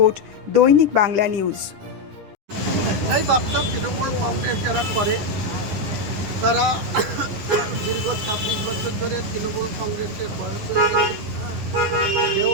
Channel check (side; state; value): left; late; 10 ms